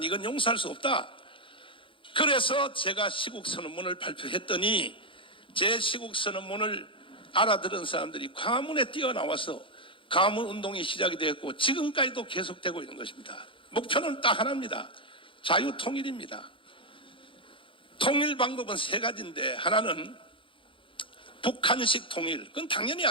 이건 용서할 수 없다. 그래서 제가 시국선언문을 발표했더니 제 시국선언문을 알아들은 사람들이 광화문에 뛰어나와서 광화문운동이 시작이 되었고 지금까지도 계속되고 있는 것입니다. 목표는 딱 하나입니다. 자유통일입니다. 통일 방법은 세 가지인데, 하나는 북한식 통일, 그건 당연히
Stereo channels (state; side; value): late; right; 0.25 ms